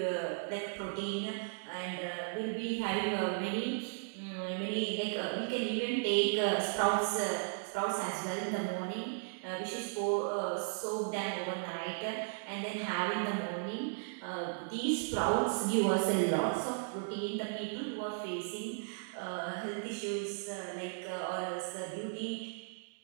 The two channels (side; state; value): left; silent; digital silence